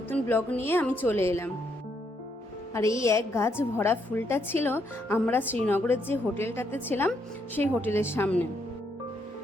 ব্লগ নিয়ে আমি চলে এলাম। আর এই এক গাছ ভরা ফুলটা ছিল আমরা শ্রীনগরের যে হোটেলটাতে ছিলাম সেই হোটেলের সামনে।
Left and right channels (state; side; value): normal; both; correlation 0.75